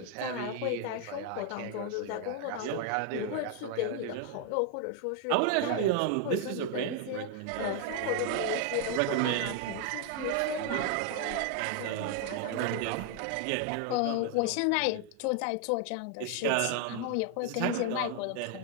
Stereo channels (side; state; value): both; different; correlation 0.00